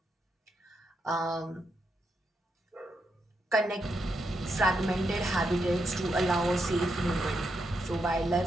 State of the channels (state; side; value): normal; both; correlation 0.82